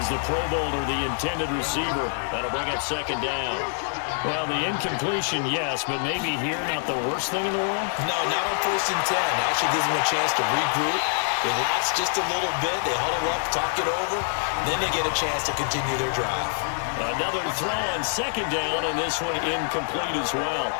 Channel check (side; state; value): right; silent; 59 dB below the other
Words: the Pro Bowler, the intended receiver. That'll bring up second down. Well, the incompletion, yes, but maybe here not the worst thing in the world? No, not on 1st and 10. Actually gives them a chance to regroup, relax just a little bit. They huddle up, talk it over. Then they get a chance to continue their drive. Another throw on second down, and this one incomplete as well.